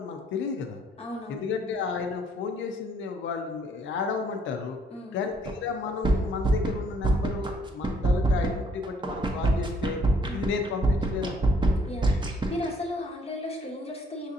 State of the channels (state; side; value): normal; both; correlation 0.64